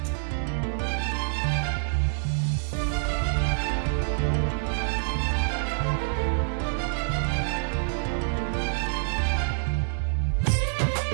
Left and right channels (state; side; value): silent; left; digital silence